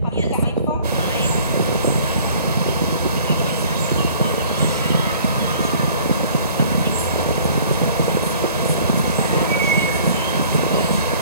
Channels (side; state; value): both; inverted; correlation -0.52